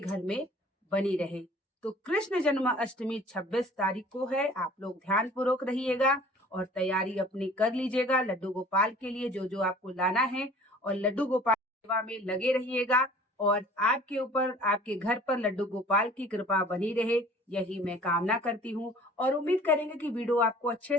में बनी रहे। तो कृष्ण जन्माष्टमी 26 तारीख को है। आप लोग ध्यान पूर्वक रहिएगा और तैयारी अपनी कर लीजिएगा लड्डू गोपाल के लिए जो जो आपको लाना है और लड्डू गोपाल सेवा में लगे रहिएगा और आपके ऊपर, आपके घर पर लड्डू गोपाल की कृपा बनी रहे, यही मैं कामना करती हूँ और उम्मीद करेंगे कि वीडियो आपको अच्छे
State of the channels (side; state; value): both; normal; correlation 0.49